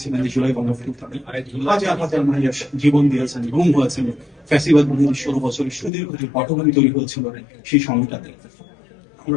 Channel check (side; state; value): right; drops out; at 5.9 s